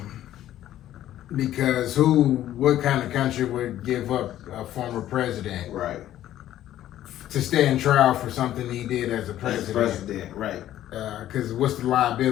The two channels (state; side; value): quieter; right; 12.7 dB